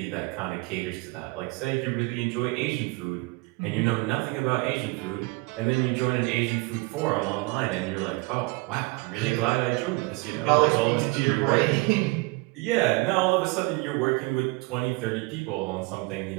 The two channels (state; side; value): quieter; left; 25.5 dB